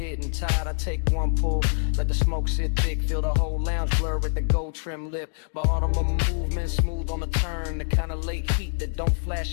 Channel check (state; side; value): silent; right; digital silence